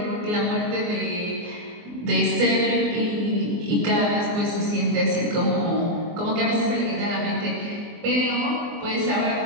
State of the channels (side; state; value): left; late; 24 ms